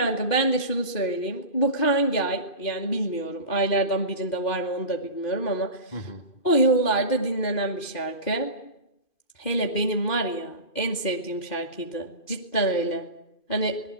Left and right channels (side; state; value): right; late; 2.5 ms